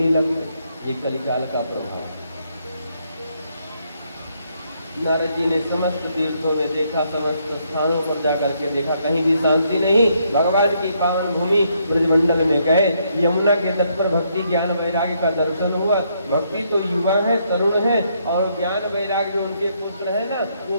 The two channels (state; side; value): inverted; both; correlation -0.74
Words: लगते। ये कलिकाल का प्रभाव है। नारद जी ने समस्त तीर्थों में देखा, समस्त स्थानों पर जाकर के देखा, कहीं भी शांति नहीं। भगवान की पावन भूमि ब्रजमंडल में गए, यमुना के तट पर भक्ति ज्ञान वैराग्य का दर्शन हुआ। भक्ति तो युवा है, तरुण है, और ज्ञान वैराग्य उनके पुत्र है ना, वो